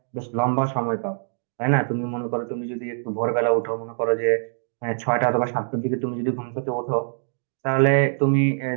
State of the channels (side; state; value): left; silent; digital silence